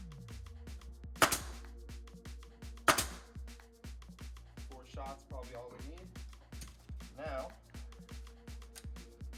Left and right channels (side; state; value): both; identical; correlation 1.00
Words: 4 shots, probably all we need. Now,